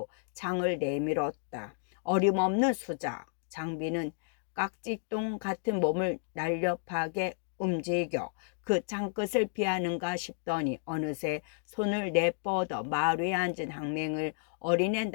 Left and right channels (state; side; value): silent; right; digital silence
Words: 창을 내밀었다. 어림없는 수작. 장비는 깍지똥 같은 몸을 날렵하게 움직여 그 창끝을 피하는가 싶더니 어느새 손을 내뻗어 말 위에 앉은 항맹을 어린애